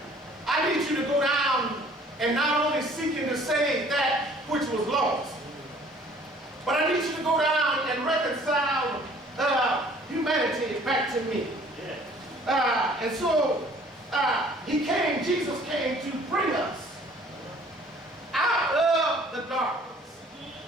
I need you to go down and not only seeking to save that which was lost, but I need you to go down and reconcile humanity back to me. And so Jesus came to bring us out of the darkness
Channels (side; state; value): both; normal; correlation 0.55